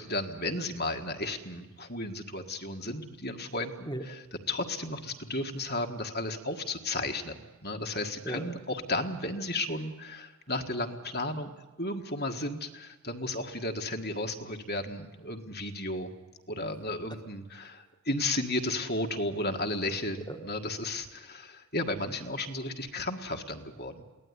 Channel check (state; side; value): normal; both; correlation 0.13